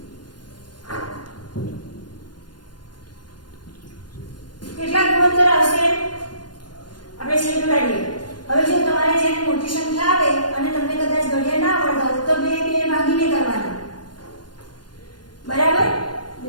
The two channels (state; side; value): late; right; 0.71 ms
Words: કેટલા ગુણોત્તર આવશે? આપણે છેદ ઉડાડીએ. હવે જો તમારે જેની મોટી સંખ્યા આવે અને તમને કદાચ ઘડિયા ના આવડતા હોય તો 2 ભાગીને કરવાના. બરાબર?